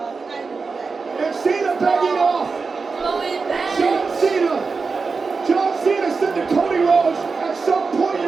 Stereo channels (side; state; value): left; quieter; 4.6 dB